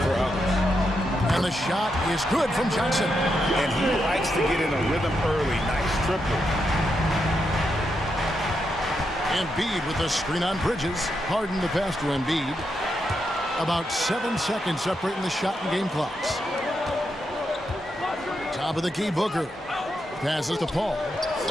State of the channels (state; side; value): normal; both; correlation 0.83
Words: others. And the shot is good from Johnson. And he likes to get in a rhythm early. Nice triple. Embiid with the screen on Bridges. Harden the pass to Embiid. About 7 seconds separating the shot and game clocks. Top of the key, Booker. Passes to Paul.